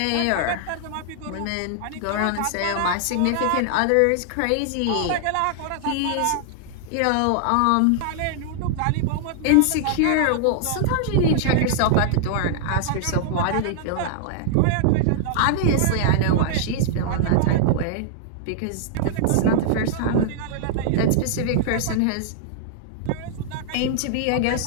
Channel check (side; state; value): both; different; correlation -0.01